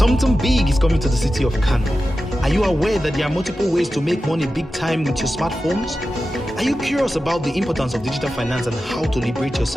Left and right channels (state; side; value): normal; both; correlation 0.93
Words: big is coming to the city of Kano. Are you aware that there are multiple ways to make money big time with your smartphones? Are you curious about the importance of digital finance and how to liberate